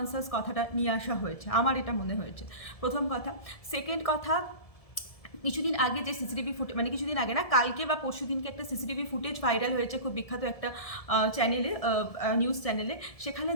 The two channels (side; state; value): right; late; 1.7 ms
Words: কথাটা নিয়ে আসা হয়েছে, আমার এটা মনে হয়েছে প্রথম কথা। সেকেন্ড কথা, কিছুদিন আগে যে সিসিটিভি ফুটেজ, কিছুদিন আগে না, কালকে বা পরশু দিনকে একটা সিসিটিভি ফুটেজ ভাইরাল হয়েছে খুব বিখ্যাত একটা চ্যানেলে, নিউজ চ্যানেলে। সেখানে